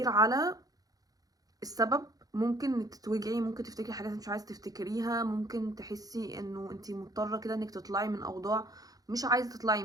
على السبب ممكن انك تتوجعي، ممكن تفتكري حاجات مش عايزه تفتكريها، ممكن تحسي انه انتي مضطره كده انك تطلعي من اوضاع مش عايزه تطلعي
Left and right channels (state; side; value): late; left; 0.18 ms